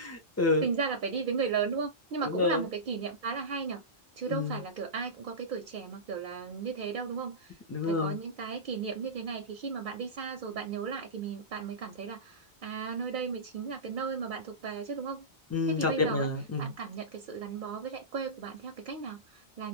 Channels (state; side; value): normal; both; correlation -0.19